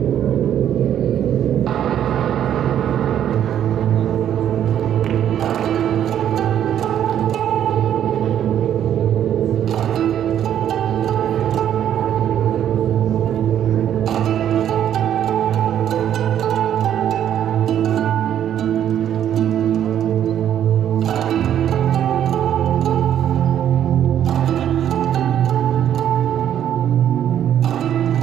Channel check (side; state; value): left; quieter; 10.3 dB